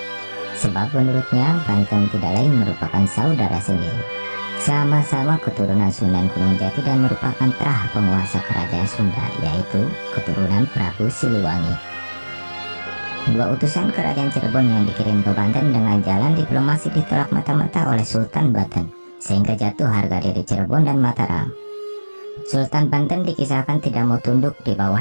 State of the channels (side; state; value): both; inverted; correlation -1.00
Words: Sebab menurutnya Banten tidak lain merupakan saudara sendiri, sama-sama keturunan Sunan Gunung Jati dan merupakan terah penguasa kerajaan Sunda, yaitu keturunan Prabu Siliwangi. Dua utusan kerajaan Cirebon yang dikirim ke Banten dengan jalan diplomasi ditolak mata-mata oleh Sultan Banten, sehingga jatuh harga diri Cirebon dan Mataram. Sultan Banten dikisahkan tidak mau tunduk di bawah